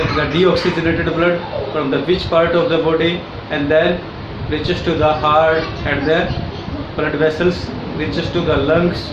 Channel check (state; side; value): identical; both; correlation 1.00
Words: the deoxygenated blood from the which part of the body and then reaches to the heart, and then blood vessels reaches to the lungs,